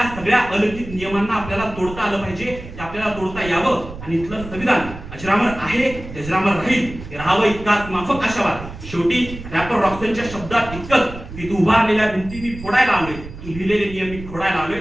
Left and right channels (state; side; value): noise; right; rumble, 13 dB below the sound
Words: सगळ्या अलौकिक नियमांना आपल्याला तोडता आलं पाहिजे, ते आपल्याला तोडता यावं आणि इथलं संविधान अजरामर आहे, अजरामर राहील, हे राहावं इतकाच माफक आशावाद. शेवटी रॅपर रॉक्सनच्या शब्दात इतकंच की तू उभारलेल्या भिंती मी फोडायला आलोय, तू लिहिलेले नियम मी फोडायला आलोय.